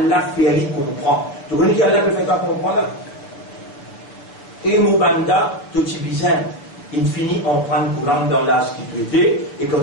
fait lui comprendre. Tu connais qui Allah peut faire comprendre là? Et Moubanda, tout petit bizarre, il finit en prendre courant dans l'âge qui tu étais, et quand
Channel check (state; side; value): late; right; 7.1 ms